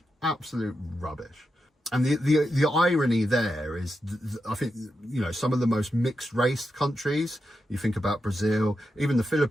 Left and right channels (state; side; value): normal; both; correlation 0.87